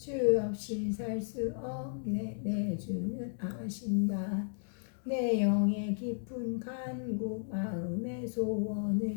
없이 살 수 없네 내 주는 아신다 내 영의 깊은 간구 마음의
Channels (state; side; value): silent; right; digital silence